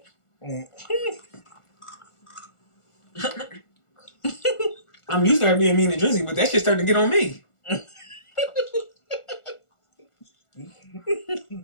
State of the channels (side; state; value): right; late; 1.4 ms